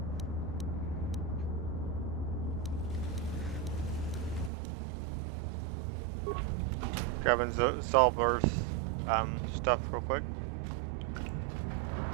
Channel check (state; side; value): drops out; left; at 4.5 s